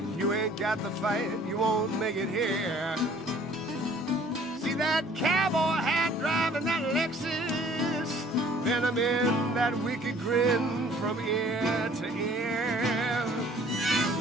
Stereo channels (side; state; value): both; normal; correlation 0.55